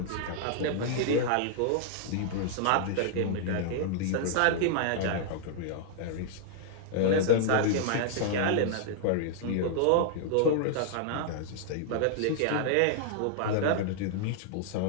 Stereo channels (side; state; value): both; different; correlation -0.01